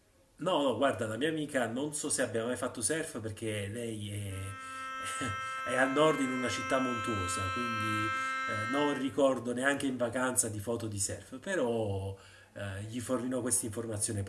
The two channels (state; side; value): identical; both; correlation 1.00